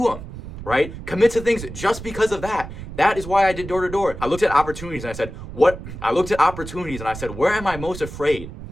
them. Right? Commit to things just because of that. That is why I did door to door. I looked at opportunities and I said, where am I most afraid?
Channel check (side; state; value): right; noise; rumble, 11 dB below the sound